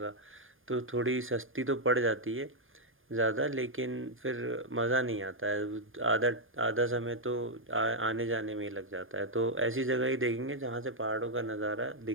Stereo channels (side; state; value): left; late; 0.59 ms